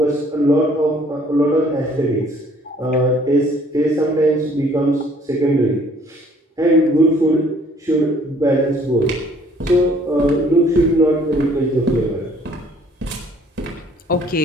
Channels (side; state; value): both; normal; correlation 0.59